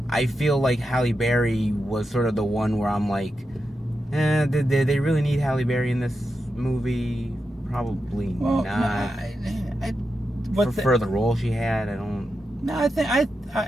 I feel like Halle Berry was sort of the one where I'm like, did they really need Halle Berry in this movie? Probably not. For the role she had, I don't. No,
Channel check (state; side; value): normal; both; correlation 0.88